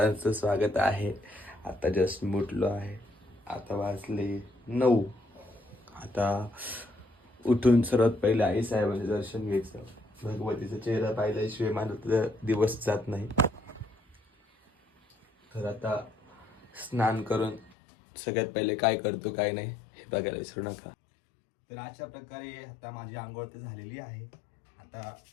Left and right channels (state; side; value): drops out; right; at 17.7 s